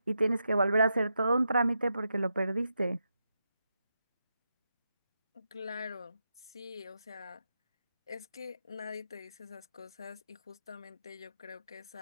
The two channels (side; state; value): both; inverted; correlation -0.85